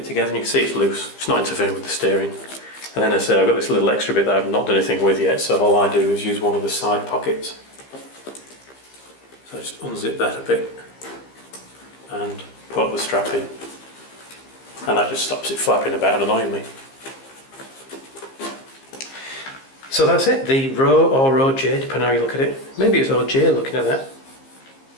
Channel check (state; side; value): late; right; 15 ms